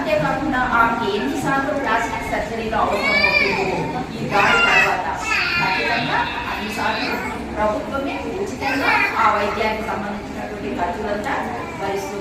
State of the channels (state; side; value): identical; both; correlation 1.00